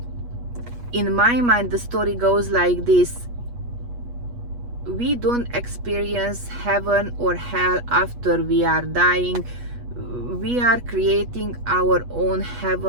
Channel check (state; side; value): late; left; 8.3 ms